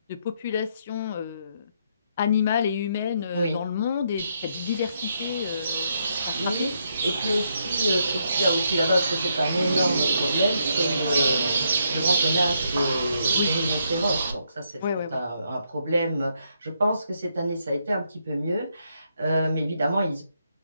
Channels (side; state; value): both; inverted; correlation -0.76